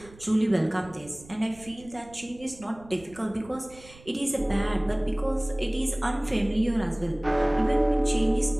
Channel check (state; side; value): noise; right; rumble, 22 dB below the sound